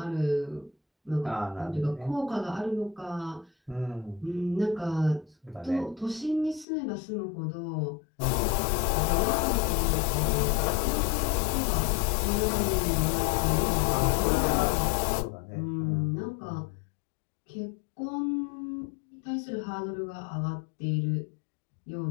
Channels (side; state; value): right; drops out; at 6.7 s